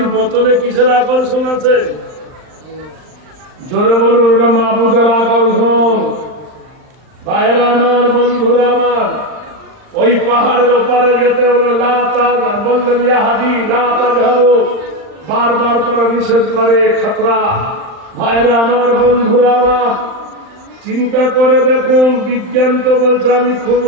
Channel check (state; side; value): late; left; 39 ms